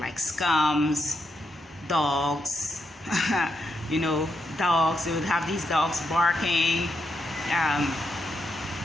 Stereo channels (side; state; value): both; normal; correlation 0.82